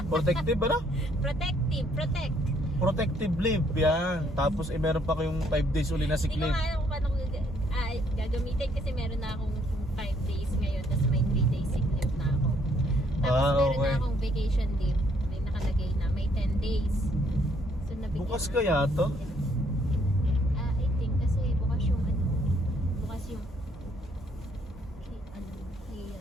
Protective, ano? Protective. Protect. Protective leave, yan. Tapos meron pa kayong 5 days uli na sick Hindi ko leave. nga alam kung paano ko gagamitin kasi meron na akong 5 days ngayon tapos may 3 days sick leave na ako. Tapos meron okay. na akong vacation leave. May nakalagay na may 10 days. So nabigyan Bukas na- kaya to? I think kasi bukas yung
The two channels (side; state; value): both; normal; correlation 0.67